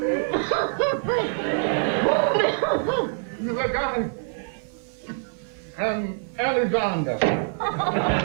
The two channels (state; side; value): silent; left; 55 dB below the other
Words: The guy, Alexander.